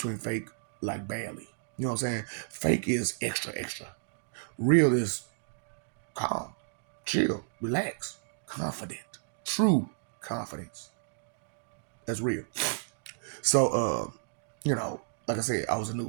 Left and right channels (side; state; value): left; silent; digital silence